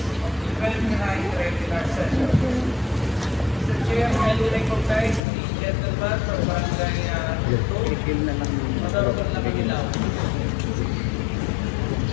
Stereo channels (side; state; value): right; drops out; at 5.2 s